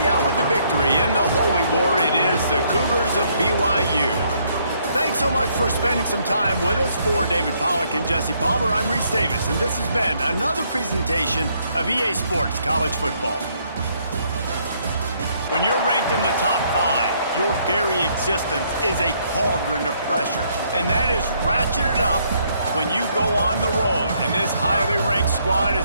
out with the victory in the Holy War, it is the Cougars of BYU. Thanks so much for spending some time with us. For David Pollack and Jesse Palmer, I'm Reese Davis, and this has been another presentation of EA Sports College Football. When you're ranked in the top 5, your very existence is a cauldron of pressure, and that is ratcheted up when you go on the road, and this highly ranked squad has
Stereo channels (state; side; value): inverted; both; correlation -0.69